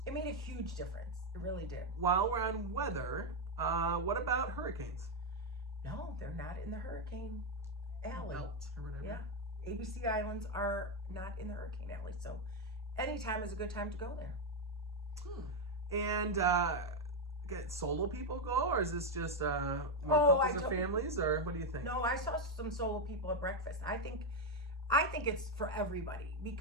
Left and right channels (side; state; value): both; normal; correlation 0.04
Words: It made a huge difference. It really did. While we're on weather, what about hurricanes? No, they're not in the hurricane alley. Belt or whatever. Yeah. ABC Islands are not in the hurricane alley. So anytime is a good time to go there. And get solo people go, or is this just more couples or families, or what do you think? No, I saw some solo people at breakfast. I think it's for everybody